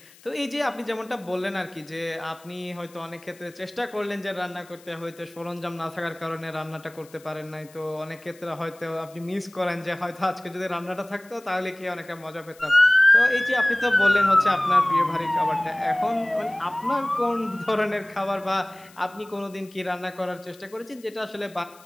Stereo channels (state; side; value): noise; left; hiss, 25 dB below the sound